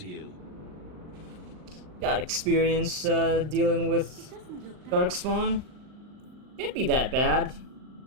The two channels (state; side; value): late; left; 39 ms